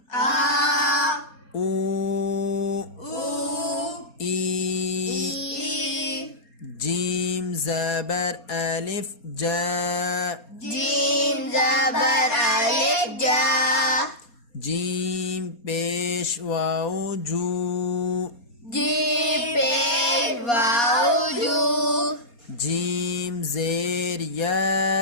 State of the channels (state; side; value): late; right; 4.2 ms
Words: او ای جیم زبر ألف جا جیم پیش واو جو جیم زیر